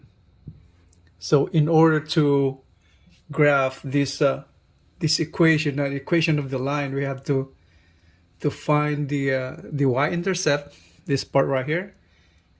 So in order to graph this equation, the equation of the line, we have to find the y-intercept, this part right here,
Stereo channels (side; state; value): both; identical; correlation 1.00